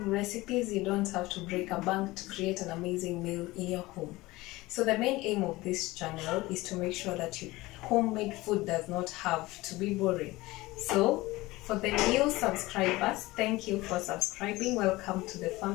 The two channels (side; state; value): right; quieter; 19.9 dB